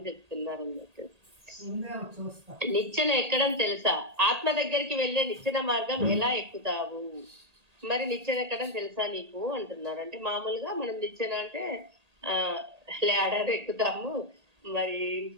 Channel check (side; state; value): left; late; 1.8 ms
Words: చెప్తున్నారు అన్నట్టు. నిచ్చెన ఎక్కడం తెలుసా? ఆత్మ దగ్గరికి వెళ్ళే నిచ్చెన మార్గం ఎలా ఎక్కుతావు? మరి నిచ్చెన ఎక్కడం తెలుసా నీకు అంటున్నారు. అంటే మామూలుగా మనం నిచ్చెన అంటే ల్యాడర్ ఎక్కుతాము, మరి